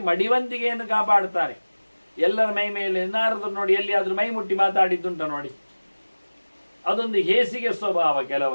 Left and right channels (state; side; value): inverted; both; correlation -1.00